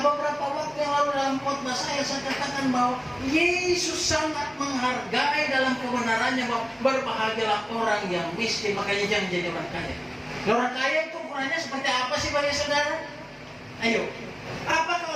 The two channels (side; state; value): both; identical; correlation 1.00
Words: beberapa waktu yang lalu dalam khotbah saya katakan bahwa Yesus sangat menghargai dalam kebenarannya bahwa berbahagialah orang yang miskin, makanya jangan jadi orang kaya. Orang kaya itu ukurannya seperti apa sih bagi saudara? Ayo, apakah